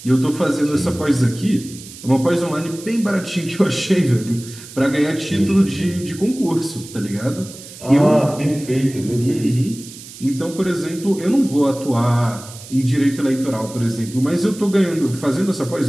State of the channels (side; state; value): right; noise; hiss, 16 dB below the sound